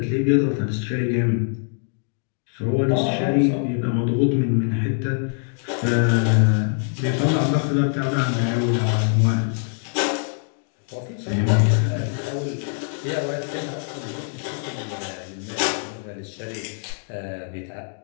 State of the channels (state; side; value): silent; right; 62 dB below the other